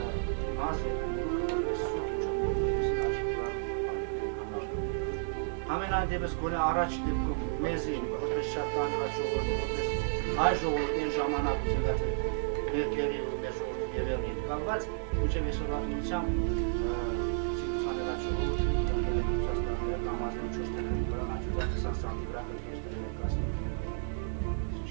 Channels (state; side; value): silent; left; digital silence